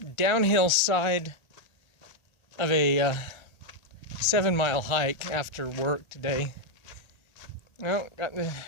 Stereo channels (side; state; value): right; late; 1.2 ms